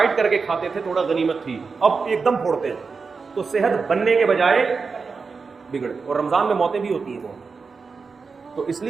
کر کے کھاتے تھے, تھوڑا غنیمت تھی, اب ایک دم پھوڑتے ہیں, تو صحت بننے کے بجائے بگڑ. اور رمضان میں موتیں بھی ہوتی ہیں بہت. تو اس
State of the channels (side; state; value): left; quieter; 4.8 dB